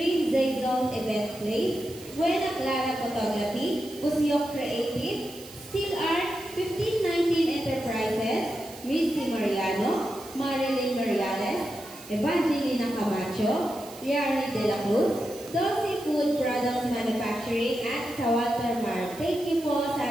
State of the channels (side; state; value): right; noise; hiss, 18 dB below the sound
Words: Zay Zone Event Place, Buena Clara Photography, Usyok Creative, Steel Art, 1519 Enterprises, Missy Mariano, Marilyn Mariales, Evangelina Camacho, Yari De La Cruz, Dulce Food Products Manufacturing at sa Walter Mart. Thank you po